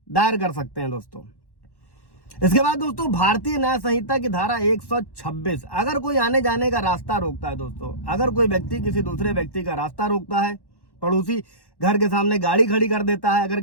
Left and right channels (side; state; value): right; late; 1.1 ms